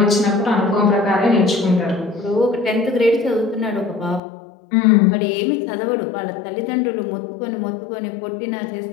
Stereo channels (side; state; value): right; drops out; at 4.2 s